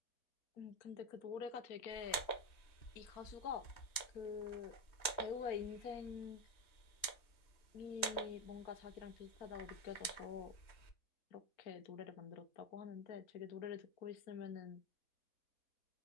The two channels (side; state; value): right; late; 3.2 ms